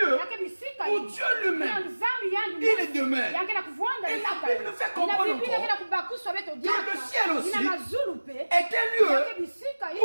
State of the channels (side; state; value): both; inverted; correlation -1.00